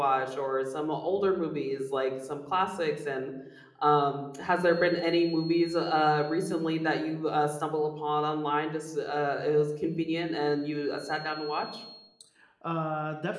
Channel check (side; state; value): both; identical; correlation 1.00